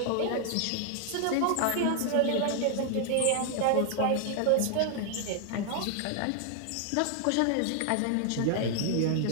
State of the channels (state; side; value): different; both; correlation 0.00